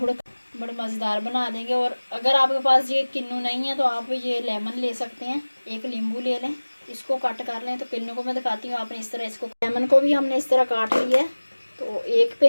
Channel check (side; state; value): both; inverted; correlation -1.00